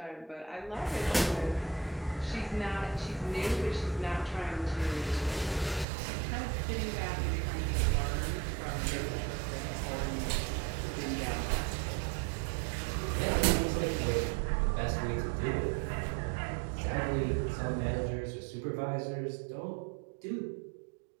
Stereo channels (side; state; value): left; drops out; at 5.9 s